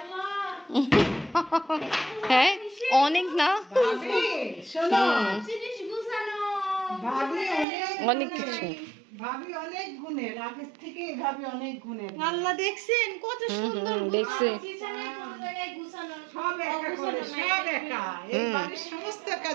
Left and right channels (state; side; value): drops out; left; at 7.7 s